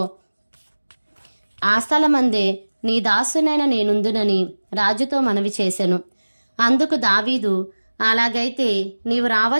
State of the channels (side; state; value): both; inverted; correlation -1.00